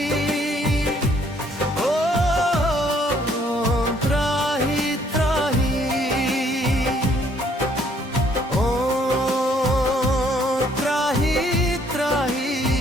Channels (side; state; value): both; normal; correlation 0.65